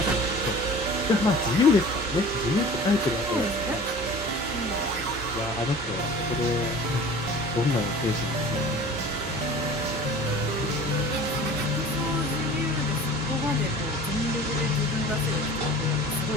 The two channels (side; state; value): both; normal; correlation 0.42